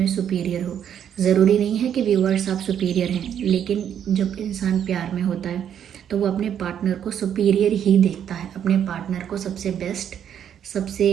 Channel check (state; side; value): quieter; left; 9.2 dB